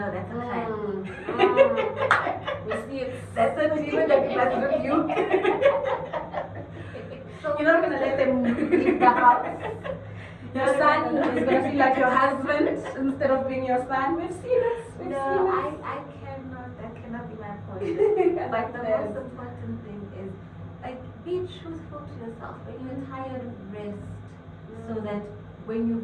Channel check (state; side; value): identical; both; correlation 1.00